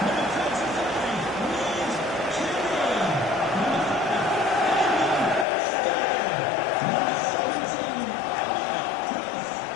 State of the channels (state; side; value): drops out; right; at 5.5 s